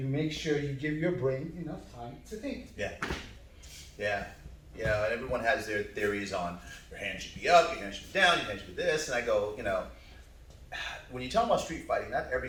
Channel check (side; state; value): both; identical; correlation 1.00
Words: make sure you give your brain enough time to think. Yeah. Yeah. You know, and everyone has their theories on your hand should be up, your hand should be down, your hand should be this. And I go, you know, when you talk about street fighting, not